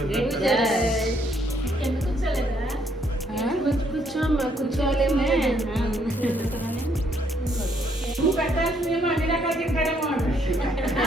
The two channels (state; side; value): normal; both; correlation 0.70